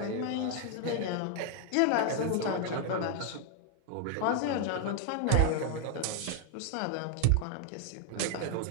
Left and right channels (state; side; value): different; both; correlation 0.00